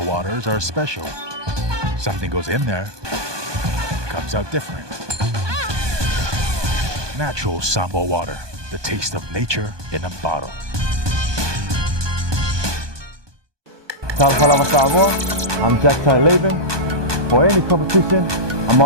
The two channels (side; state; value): left; late; 1.2 ms